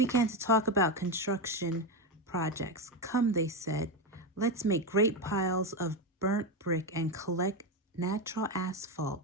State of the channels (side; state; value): both; normal; correlation 0.12